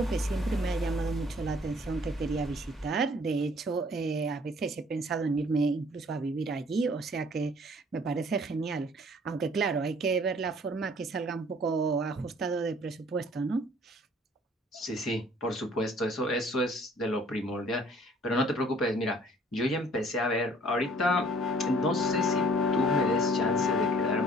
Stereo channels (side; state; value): both; normal; correlation 0.56